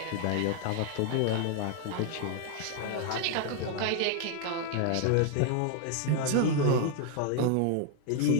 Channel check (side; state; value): both; different; correlation 0.01